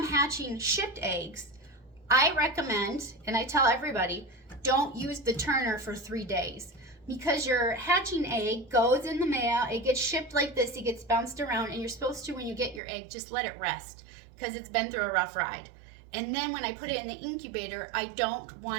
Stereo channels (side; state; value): left; drops out; at 12.8 s